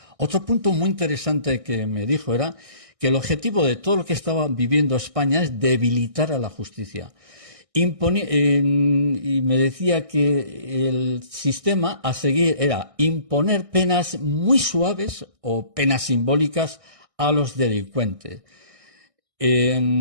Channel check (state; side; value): late; left; 1.6 ms